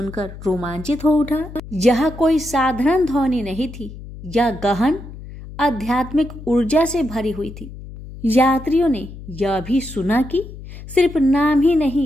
रोमांचित हो उठा। यह कोई साधारण ध्वनि नहीं थी, यह गहन आध्यात्मिक ऊर्जा से भरी हुई थी। यात्रियों ने यह भी सुना कि सिर्फ नाम ही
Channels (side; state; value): left; noise; hum, 14 dB below the sound